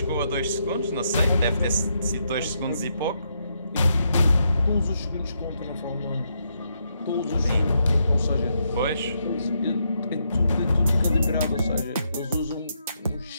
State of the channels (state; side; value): inverted; both; correlation -0.79